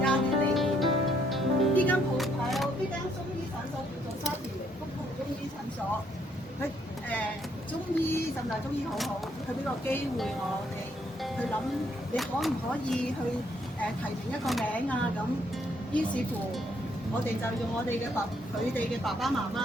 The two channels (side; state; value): both; normal; correlation 0.70